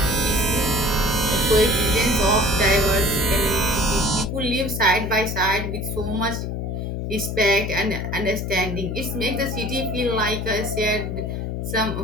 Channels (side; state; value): left; noise; hum, 3 dB below the sound